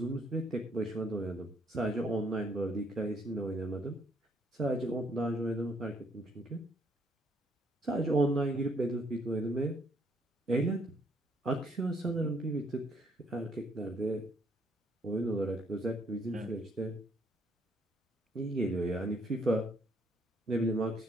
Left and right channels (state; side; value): normal; both; correlation 0.68